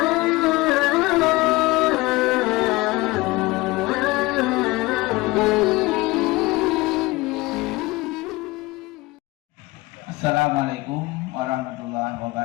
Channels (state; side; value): quieter; right; 21.6 dB